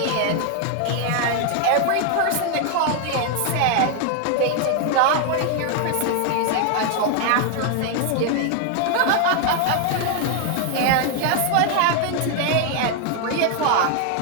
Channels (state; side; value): different; both; correlation 0.00